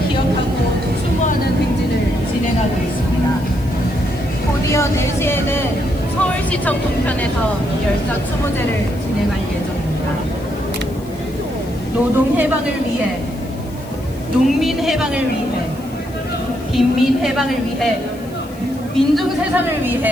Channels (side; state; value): left; noise; hiss, 23 dB below the sound